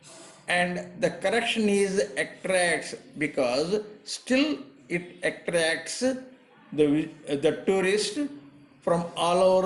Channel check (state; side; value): identical; both; correlation 1.00